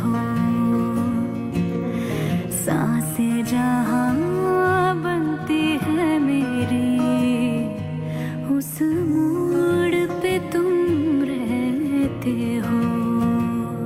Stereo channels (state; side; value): identical; both; correlation 1.00